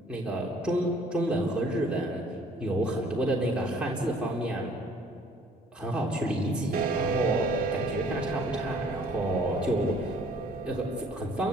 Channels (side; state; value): both; normal; correlation 0.57